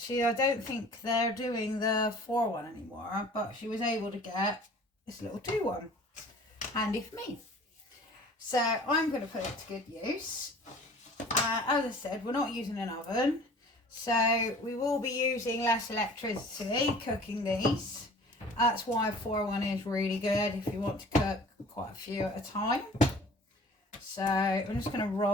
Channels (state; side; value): normal; both; correlation 0.47